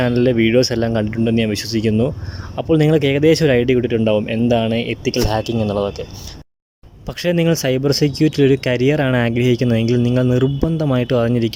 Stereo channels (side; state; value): both; identical; correlation 1.00